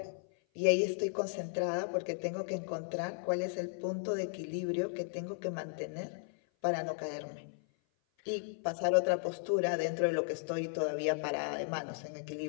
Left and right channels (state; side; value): silent; right; 54 dB below the other